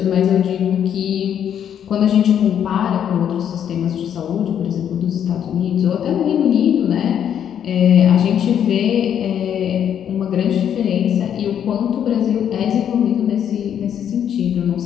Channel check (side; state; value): right; quieter; 9.2 dB